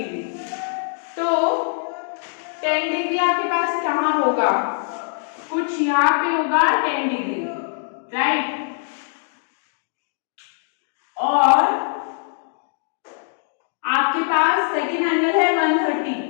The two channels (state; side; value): silent; right; 64 dB below the other